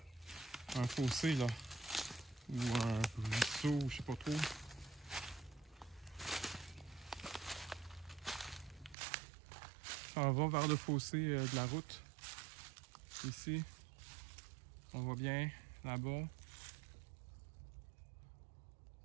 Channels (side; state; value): left; drops out; at 9.0 s